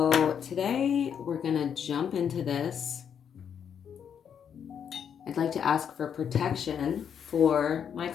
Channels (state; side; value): quieter; right; 8.0 dB